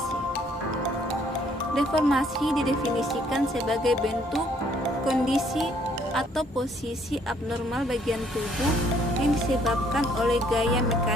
Deformasi didefinisikan sebagai bentuk, kondisi, atau posisi abnormal bagian tubuh yang disebabkan oleh gaya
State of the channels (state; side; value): normal; both; correlation 0.64